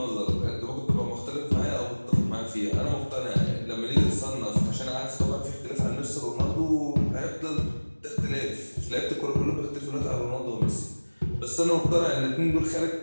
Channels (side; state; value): both; inverted; correlation -1.00